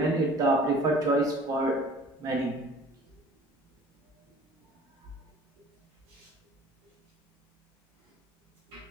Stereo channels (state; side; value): normal; both; correlation 0.48